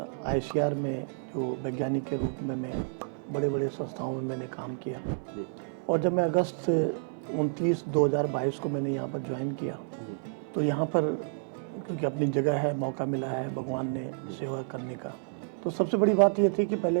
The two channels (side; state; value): left; silent; digital silence